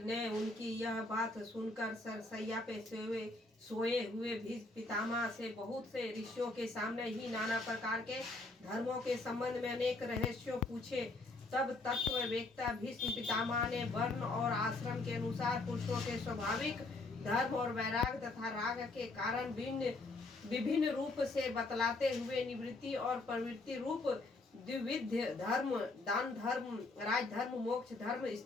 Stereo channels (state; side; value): quieter; right; 3.1 dB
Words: ने उनकी यह बात सुनकर सरसैया पे सोए हुए भीष्म पितामह से बहुत से ऋषियों के सामने ही नाना प्रकार के धर्मों के संबंध में अनेक रहस्यों पूछे। तब तत्ववेत्ता भीष्म पितामह ने वर्ण और आश्रम के अनुसार पुरुषों के स्वाभाविक धर्म और वैराग तथा राग के कारण विभिन्न रूप से बतलाते हुए निवृत्ति और प्रवृत्ति रूप द्विविध धर्म, दान धर्म, राज धर्म, मोक्ष धर्म,